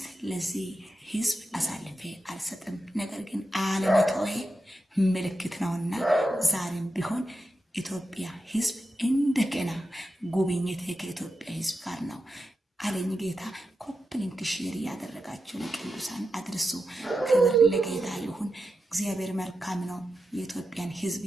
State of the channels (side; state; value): both; normal; correlation 0.89